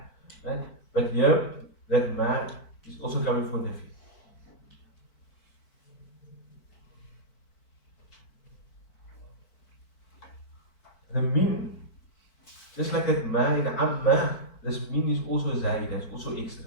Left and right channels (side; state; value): right; late; 4.5 ms